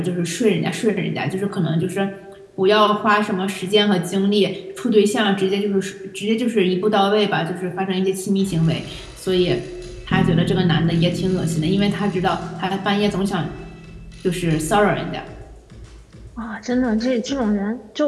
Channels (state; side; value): identical; both; correlation 1.00